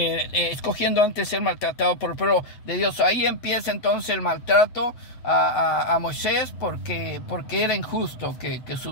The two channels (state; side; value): late; right; 7.8 ms